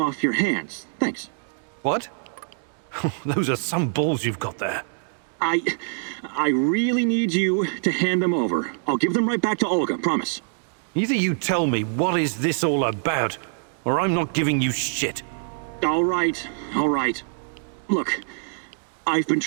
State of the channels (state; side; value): silent; left; digital silence